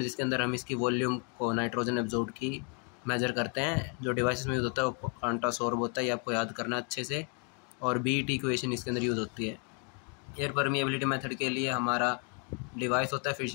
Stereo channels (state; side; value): quieter; right; 38.2 dB